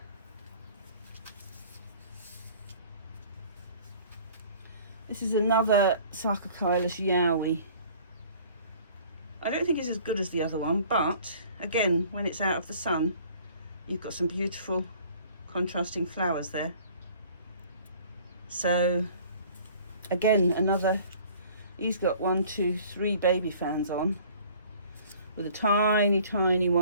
This is another Sarcochilus Yowie. I don't think it's as good as the other one, but again, when it's out of the sun, you've got some beautiful contrasting flowers there. So again, another, he's got 1, 2, 3 baby fans on, with a tiny, tiny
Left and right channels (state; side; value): inverted; both; correlation -0.51